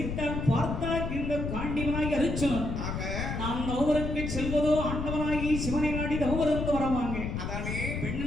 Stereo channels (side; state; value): left; noise; rumble, 4 dB below the sound